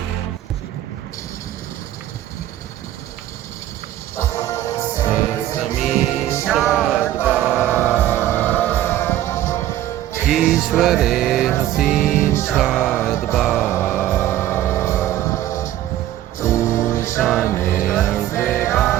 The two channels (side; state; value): left; quieter; 13.1 dB